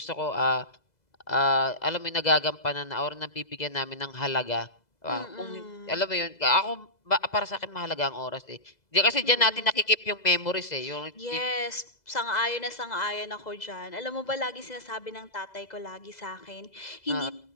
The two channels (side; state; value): right; late; 2.0 ms